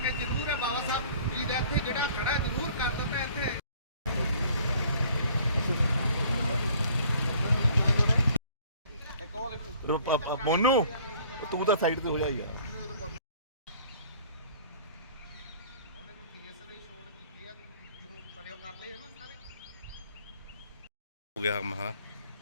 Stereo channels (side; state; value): both; inverted; correlation -0.54